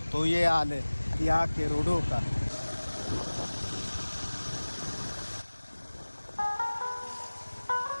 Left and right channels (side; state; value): both; inverted; correlation -1.00